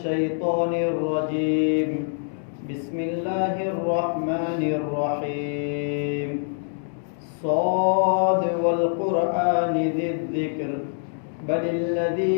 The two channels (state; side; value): silent; right; digital silence